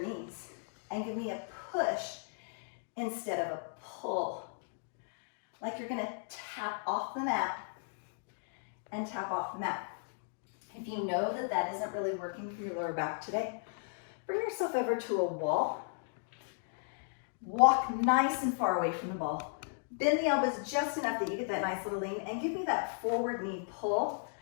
knees and give me a push instead of a pull. Like you're going to tap off the mat and tap off the mat. If you know that that isn't really working for your lower back today, bring yourself over to a wall. Walk nice and far away from the ball. Bend the elbows just enough that you get that nice little lean, and give me that forward knee pull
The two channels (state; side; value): silent; right; digital silence